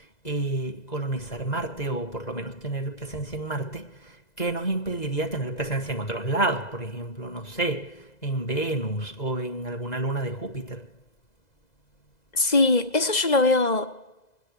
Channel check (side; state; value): right; late; 2.0 ms